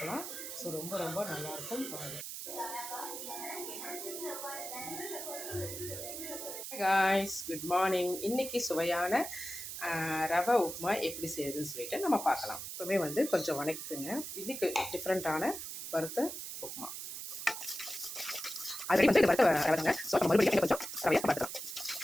ஸோ ரொம்ப ரொம்ப நல்லாயிருக்கும். Hi guys, good morning. இன்றைக்கி சுவையான ரவை உப்புமா எப்படி செய்யுதுன்னு சொல்லிட்டு நம்ம பார்க்கலாம். எப்பவுமே கொஞ்சம் வணக்கிக்குங்க. இன்றைக்கி டிஃப்ரெண்ட்டான வறுத்த உப்புமா. அது வறுத்த ரவைங்க. ஸோ நம்ம மறுபடியும் கொஞ்சம் ரவையாக பார்த்துக்கலாம்.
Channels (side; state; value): right; noise; hiss, 7 dB below the sound